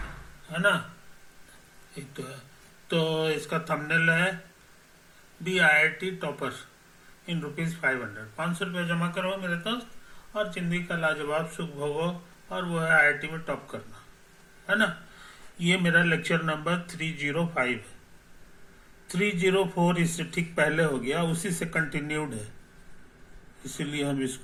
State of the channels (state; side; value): identical; both; correlation 1.00